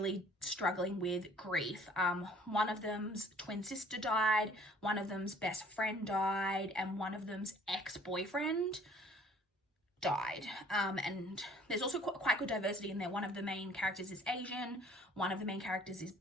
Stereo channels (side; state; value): both; normal; correlation 0.55